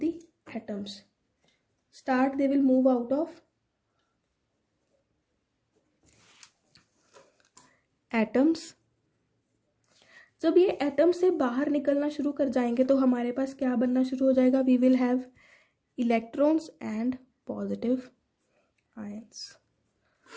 atoms, they will move out of atoms. जब ये एटम से बाहर निकलना शुरू कर जाएंगे तो हमारे पास क्या बनना शुरू हो जाएगा? We will have electrons and positive ions,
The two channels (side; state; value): both; identical; correlation 1.00